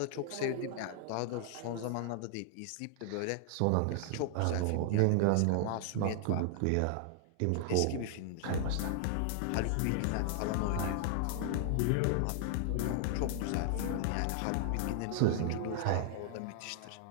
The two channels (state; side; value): different; both; correlation -0.01